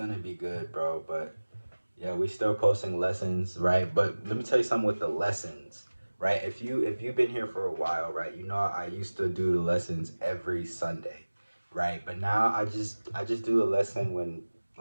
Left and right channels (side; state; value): both; inverted; correlation -1.00